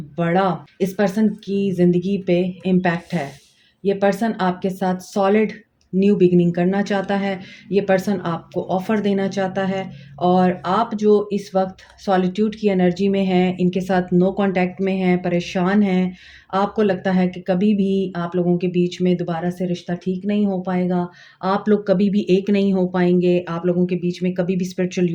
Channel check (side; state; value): both; identical; correlation 1.00